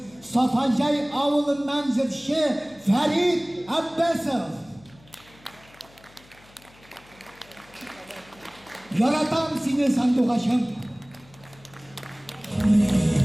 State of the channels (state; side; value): noise; left; hum, 27 dB below the sound